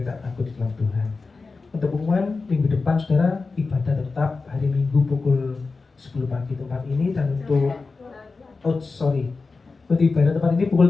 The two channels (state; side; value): quieter; right; 4.1 dB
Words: tidak takut di dalam Tuhan. Untuk pengumuman minggu depan saudara, ibadah tetap hari Minggu pukul 10 pagi tempat ini, dan untuk untuk ibadah tempat ini